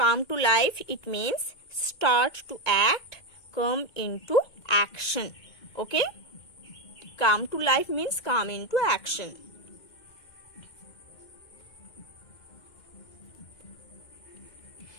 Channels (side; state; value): right; late; 2.1 ms